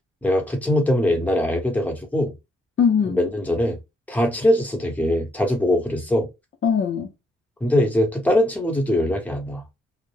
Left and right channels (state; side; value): normal; both; correlation 0.74